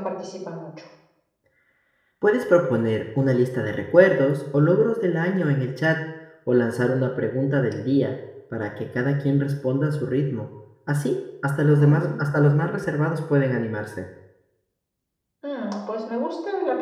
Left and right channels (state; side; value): identical; both; correlation 1.00